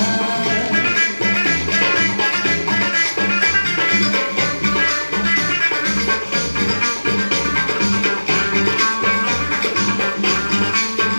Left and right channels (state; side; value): inverted; both; correlation -1.00